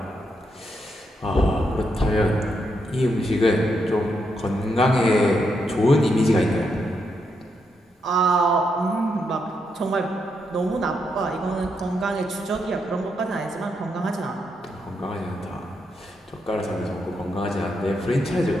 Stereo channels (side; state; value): both; normal; correlation 0.80